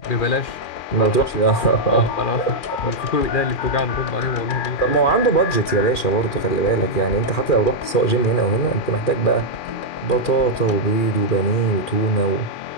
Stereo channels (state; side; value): late; right; 2.4 ms